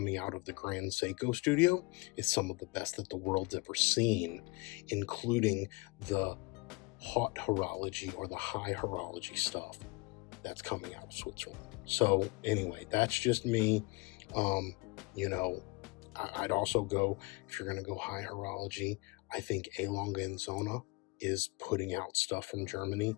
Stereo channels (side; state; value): right; quieter; 26.5 dB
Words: out of the Grand Seiko studio is some of the best that the world's ever seen, including the hot horology or the high horology stuff that's coming out of Switzerland. So anyway, that's just me. I'd also go, if you're going to go high horology, I think A. Longa and Zona is putting out stuff from Germany